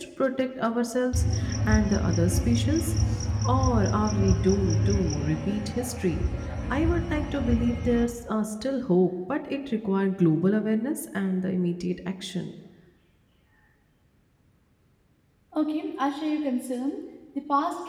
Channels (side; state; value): both; identical; correlation 1.00